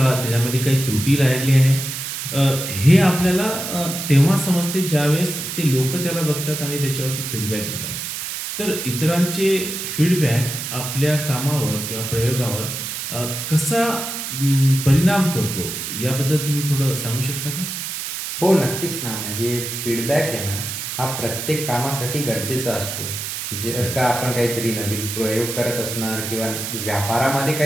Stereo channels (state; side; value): noise; right; hiss, 5 dB below the sound